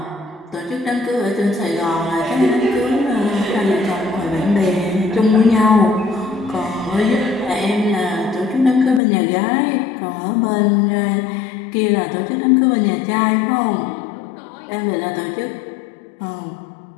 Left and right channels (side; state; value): right; drops out; at 9.0 s